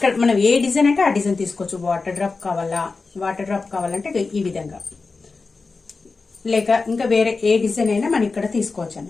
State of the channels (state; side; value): quieter; right; 4.1 dB